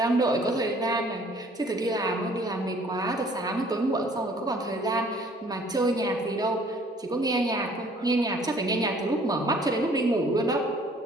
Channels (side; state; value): both; normal; correlation 0.56